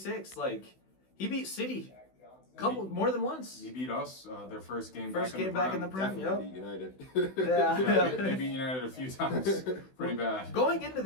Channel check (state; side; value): late; right; 16 ms